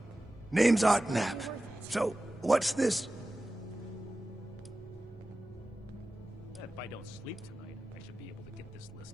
Name's Art Knapp. So, what's this? If I don't sleep tonight, I should be able to get this list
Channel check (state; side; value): normal; both; correlation 0.95